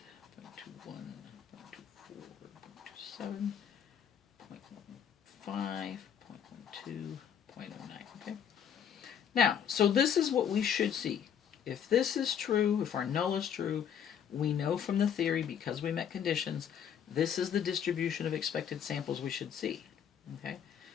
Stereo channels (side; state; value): right; quieter; 8.4 dB